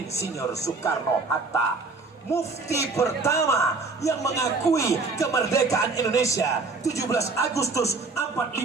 Soekarno-Hatta. Mufti pertama yang mengakui kemerdekaan Indonesia 17 Agustus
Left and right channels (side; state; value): left; quieter; 3.8 dB